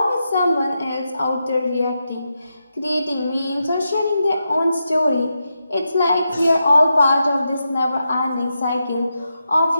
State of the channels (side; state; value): both; inverted; correlation -0.87